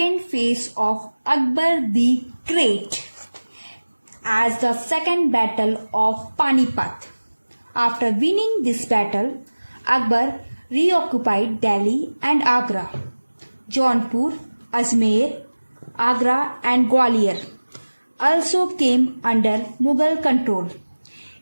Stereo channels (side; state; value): both; inverted; correlation -1.00